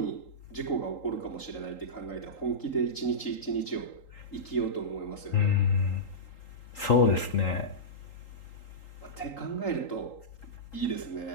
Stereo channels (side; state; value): right; late; 3.8 ms